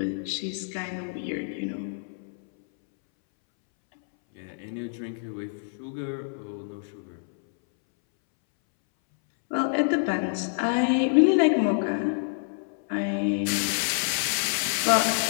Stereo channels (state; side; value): silent; right; 60 dB below the other